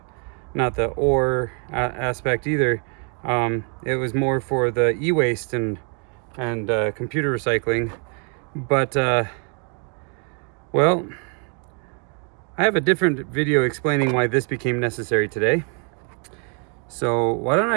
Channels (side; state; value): left; quieter; 39.4 dB